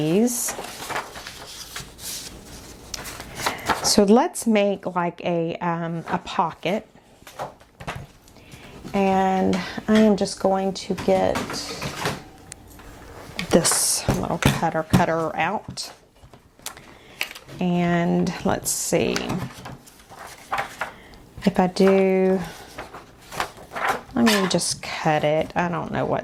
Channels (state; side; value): identical; both; correlation 1.00